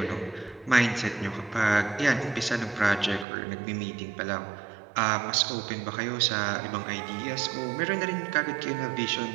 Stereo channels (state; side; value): drops out; left; at 3.2 s